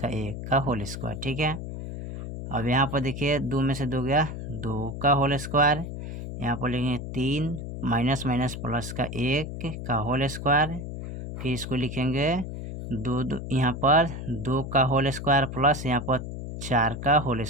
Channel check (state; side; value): noise; left; hum, 7 dB below the sound